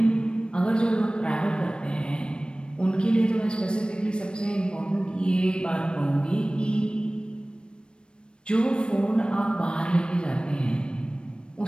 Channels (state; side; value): late; right; 0.054 ms